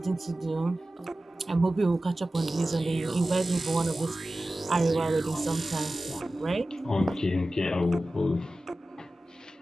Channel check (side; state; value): both; normal; correlation 0.95